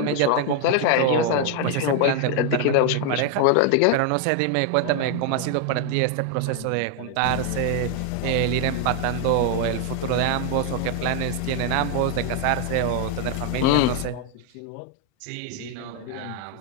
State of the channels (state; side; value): different; both; correlation 0.00